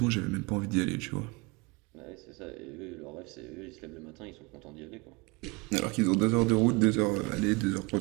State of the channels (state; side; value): quieter; left; 26.8 dB